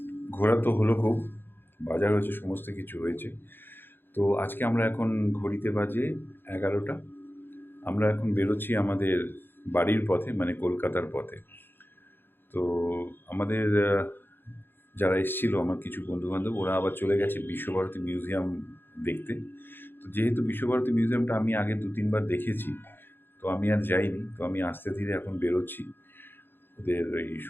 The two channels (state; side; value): late; right; 0.10 ms